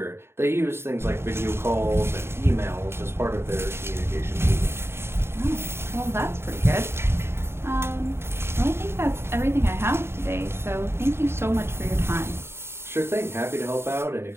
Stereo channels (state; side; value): late; left; 0.12 ms